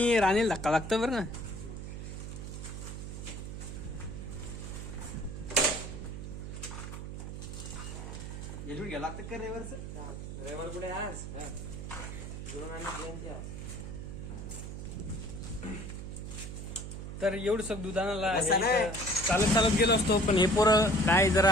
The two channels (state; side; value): noise; right; hum, 8 dB below the sound